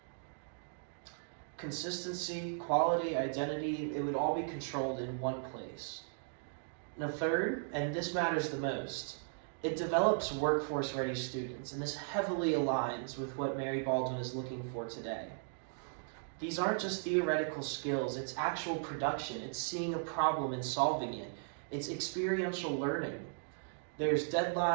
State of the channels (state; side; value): silent; left; digital silence